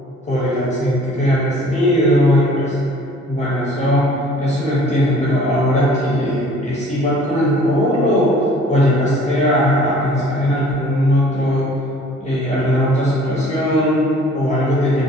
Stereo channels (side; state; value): both; normal; correlation 0.52